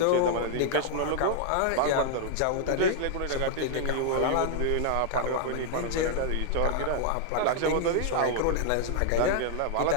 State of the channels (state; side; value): different; both; correlation 0.00